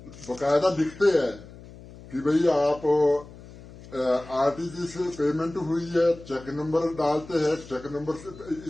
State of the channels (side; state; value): left; noise; hum, 18 dB below the sound